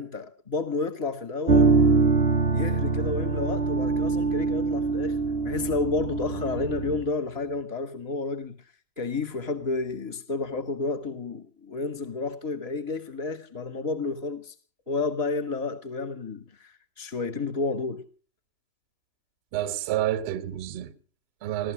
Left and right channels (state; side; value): late; left; 3.0 ms